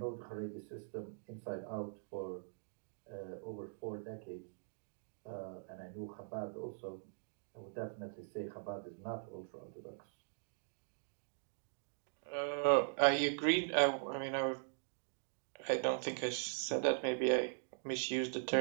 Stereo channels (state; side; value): silent; left; digital silence